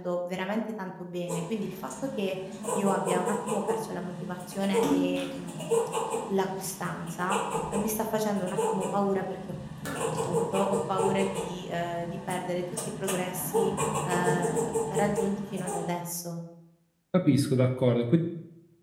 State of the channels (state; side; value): identical; both; correlation 1.00